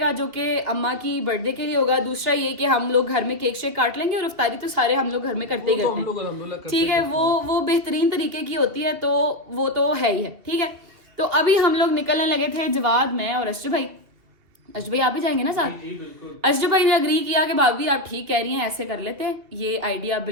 जो कि अम्मा की बर्थडे के लिए होगा। दूसरा ये कि हम लोग घर में केक शेक काट लेंगे और इफ्तारी तो सारे हम लोग घर में करते ही करते हैं। ठीक है, वो बेहतरीन तरीके की होती है, तो वो तो है ही है। ठीक है, तो अभी हम लोग निकलने लगे थे, जवाद, मैं और अशरफ भाई। अशरफ भाई आप भी जाएंगे ना साथ? अशरफ भाई ने अग्री किया कि भाभी आप ठीक कह रही हैं, ऐसे कर लेते हैं, ये आइडिया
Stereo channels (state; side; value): late; left; 2.7 ms